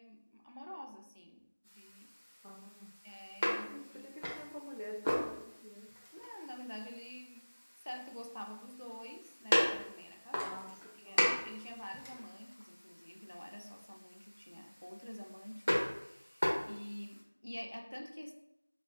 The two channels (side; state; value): both; inverted; correlation -1.00